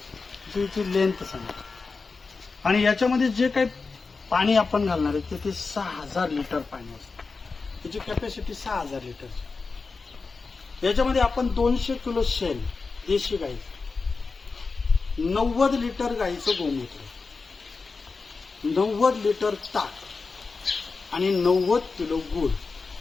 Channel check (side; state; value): right; quieter; 4.3 dB